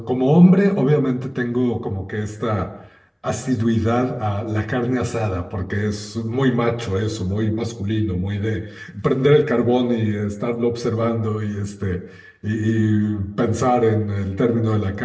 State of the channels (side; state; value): both; identical; correlation 1.00